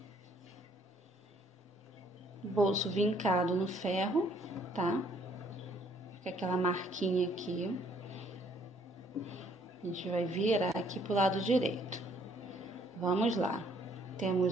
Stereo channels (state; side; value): normal; both; correlation 0.64